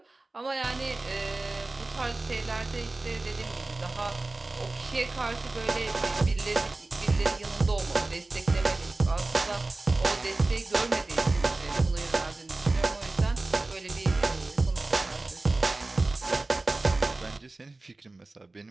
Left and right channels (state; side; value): quieter; left; 3.1 dB